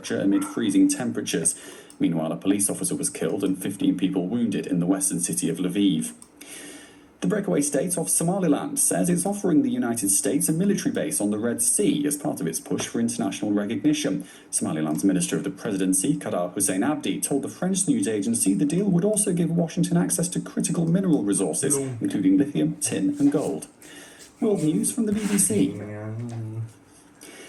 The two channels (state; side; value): identical; both; correlation 1.00